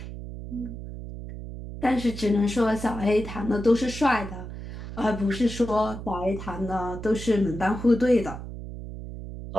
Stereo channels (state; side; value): noise; right; hum, 10 dB below the sound